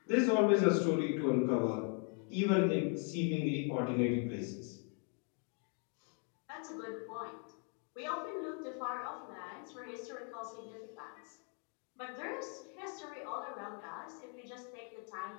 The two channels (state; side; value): quieter; right; 36.3 dB